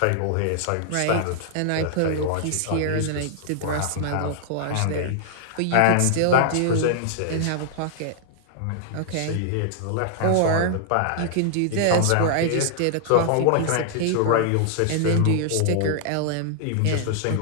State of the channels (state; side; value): different; both; correlation -0.01